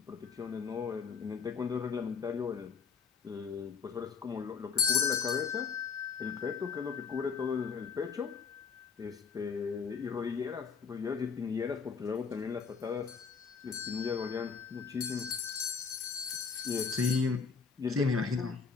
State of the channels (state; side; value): quieter; right; 5.7 dB